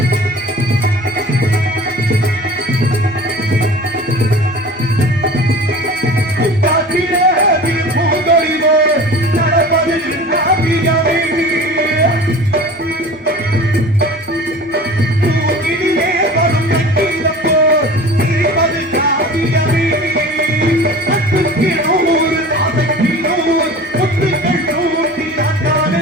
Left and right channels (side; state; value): both; normal; correlation 0.40